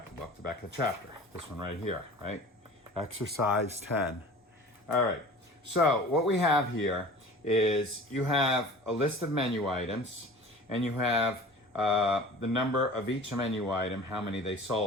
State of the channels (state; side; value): normal; both; correlation 0.41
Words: of the book, the back of the chapter. This one right here, right? Exercise 10. All right. So what we have here is you have a list of menu items and you have the number of each menu item, how many they